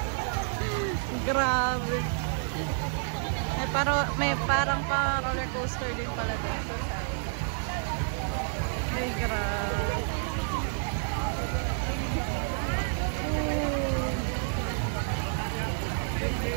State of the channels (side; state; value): left; silent; 58 dB below the other